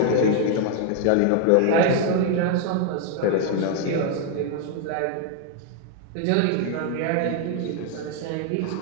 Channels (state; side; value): different; both; correlation 0.00